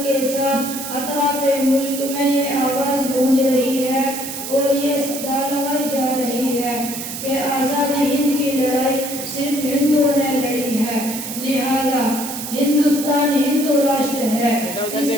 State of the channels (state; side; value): noise; right; hiss, 7 dB below the sound